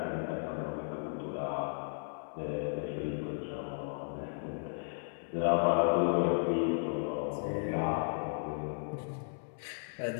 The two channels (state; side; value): silent; right; 55 dB below the other